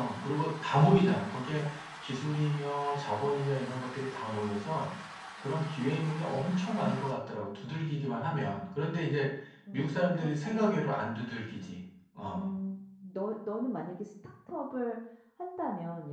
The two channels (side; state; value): both; identical; correlation 1.00